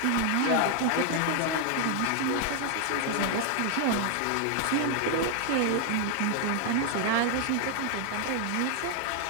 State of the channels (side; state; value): both; different; correlation 0.00